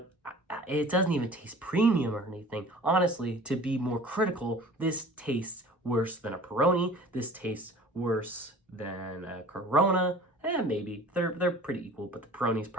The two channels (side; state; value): both; normal; correlation 0.44